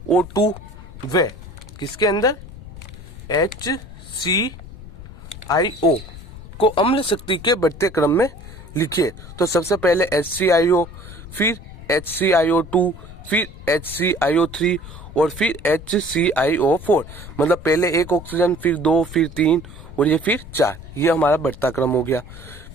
वे किसके अंदर, HClO को अम्ल शक्ति के बढ़ते क्रम में लिखिए। तो सबसे पहले HClO, फिर HClO2, फिर HClO3 और फिर HClO4। मतलब पहले एक ऑक्सीजन, फिर 2, फिर 3 और ये फिर 4। ये हमारा बढ़ता क्रम हो गया।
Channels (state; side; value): noise; left; rumble, 15 dB below the sound